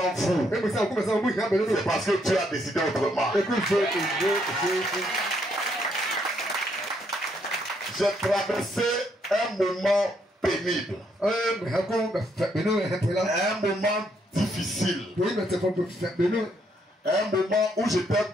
vous, c'est parce que Dieu a décidé autrement. J'ai traversé un moment pénible, un moment difficile, un moment où j'étais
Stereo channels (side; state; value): both; normal; correlation 0.73